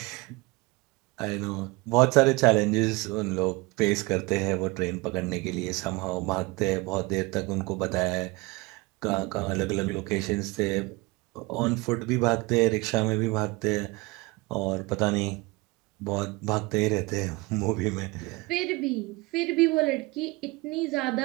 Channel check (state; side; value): quieter; left; 24.2 dB